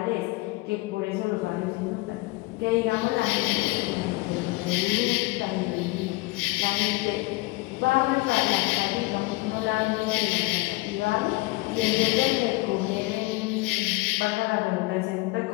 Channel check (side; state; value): right; quieter; 21.9 dB